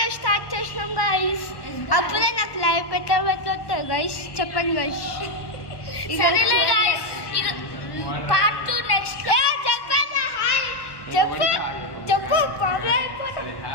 స్టార్ట్ చేసినాం గైస్. అప్పుడే నాకు లైవ్ పెట్టవచ్చు గైస్. చెప్పండి గైస్. సరేలే గైస్, పార్ట్ 2 నెక్స్ట్. చెప్పు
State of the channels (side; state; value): right; late; 1.1 ms